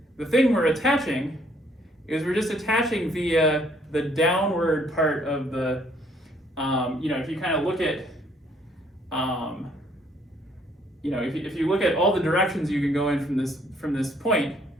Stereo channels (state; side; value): normal; both; correlation 0.65